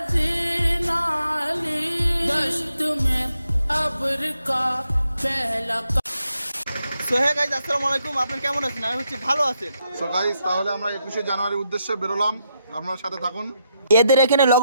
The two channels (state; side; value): inverted; both; correlation -0.80